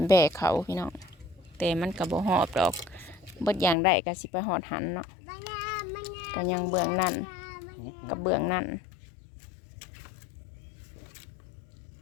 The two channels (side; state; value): right; drops out; at 3.8 s